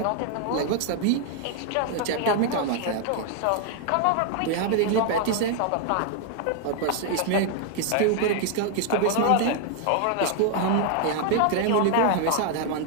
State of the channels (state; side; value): different; both; correlation 0.00